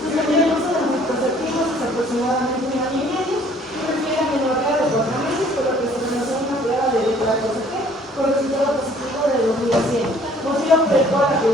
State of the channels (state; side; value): normal; both; correlation 0.57